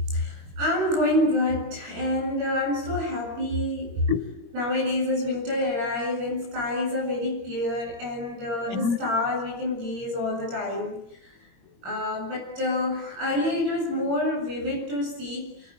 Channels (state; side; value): late; left; 22 ms